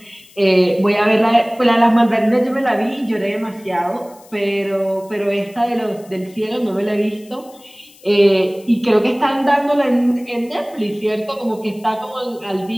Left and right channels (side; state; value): left; noise; hiss, 26 dB below the sound